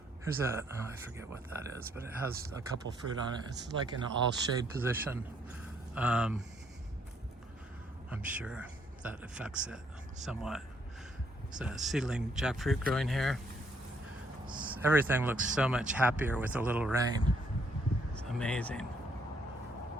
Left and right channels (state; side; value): normal; both; correlation 0.70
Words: Here's I forget what that is, but it has a couple fruit on it. It's like in an all shade position. I'm sure that affects it somewhat. It's a seedling jackfruit growing here. Everything looks so much happier with a little rain. It's amazing.